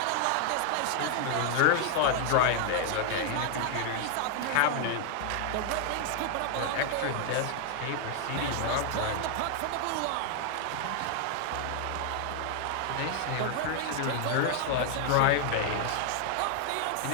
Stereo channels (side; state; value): both; different; correlation 0.00